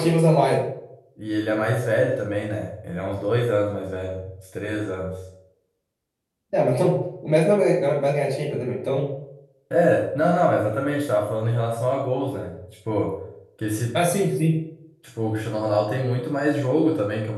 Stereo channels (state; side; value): identical; both; correlation 1.00